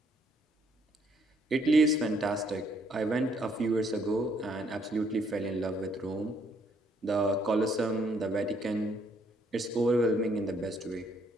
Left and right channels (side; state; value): both; normal; correlation 0.68